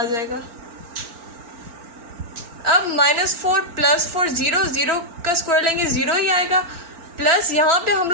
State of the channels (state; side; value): late; left; 4.4 ms